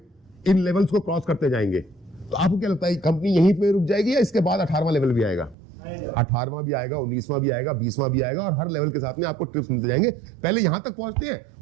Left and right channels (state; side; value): drops out; left; at 5.6 s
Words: इन लेवल्स को क्रॉस करते जाएंगे, तो आपको क्या लगता है कंपनी यहीं पे रुक जाएगी या इसके बाद 18वां लेवल भी आएगा? 18वां भी आएगा, 19वां भी आएगा, 20वां भी आएगा, और हर लेवल के साथ में आपको टिप्स मिलते जाएंगे। पहले यहां तक पहुंचते हैं,